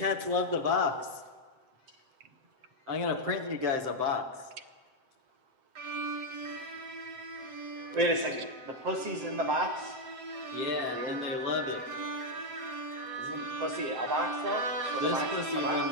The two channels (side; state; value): left; late; 7.7 ms